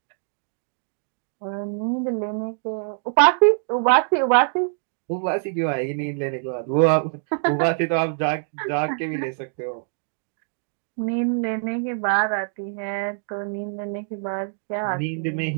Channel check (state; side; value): silent; left; digital silence